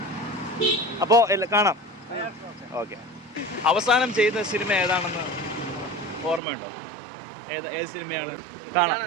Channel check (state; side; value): drops out; left; at 6.4 s